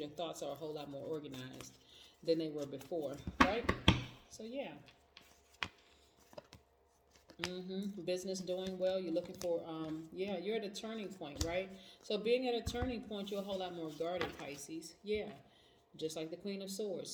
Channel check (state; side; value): identical; both; correlation 1.00